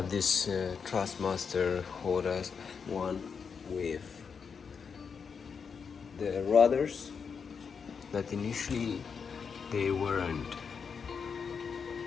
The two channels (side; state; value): right; quieter; 6.1 dB